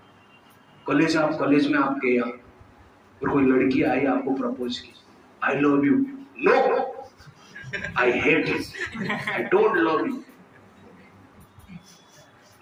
College में आप गए और कोई लड़की आई आपको प्रपोज की, I love you, no I hate you, I don't love you.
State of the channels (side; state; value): both; identical; correlation 1.00